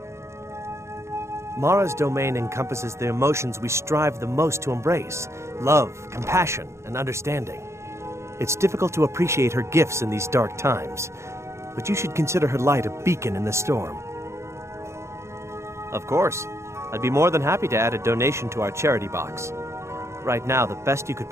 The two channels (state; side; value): late; left; 0.13 ms